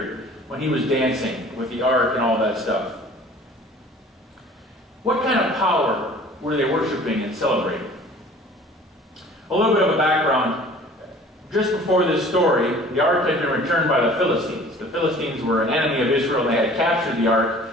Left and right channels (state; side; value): normal; both; correlation 0.48